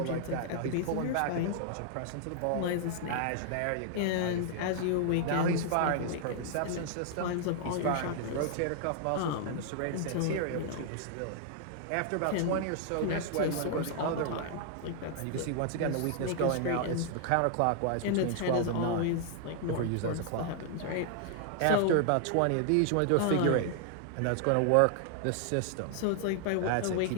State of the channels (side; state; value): both; different; correlation 0.00